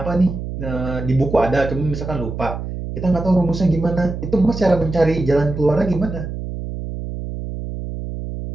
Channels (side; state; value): right; noise; hum, 7 dB below the sound